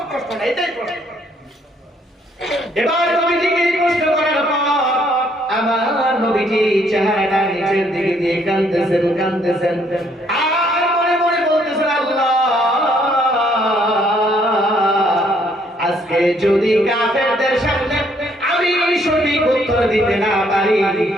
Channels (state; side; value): normal; both; correlation 0.67